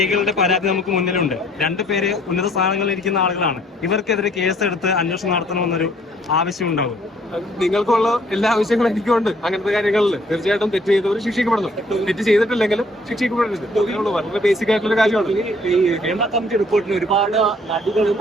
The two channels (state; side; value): normal; both; correlation 0.61